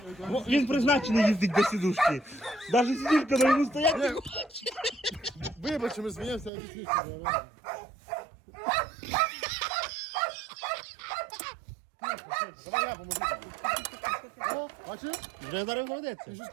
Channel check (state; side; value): drops out; left; at 6.5 s